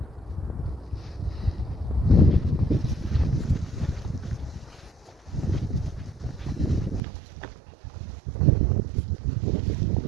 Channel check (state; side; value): drops out; left; at 7.0 s